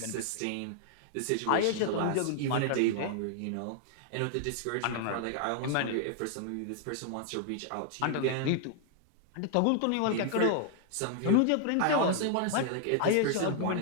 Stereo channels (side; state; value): both; different; correlation 0.00